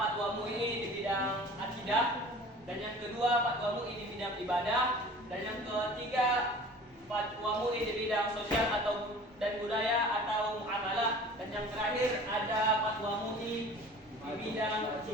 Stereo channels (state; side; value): normal; both; correlation 0.44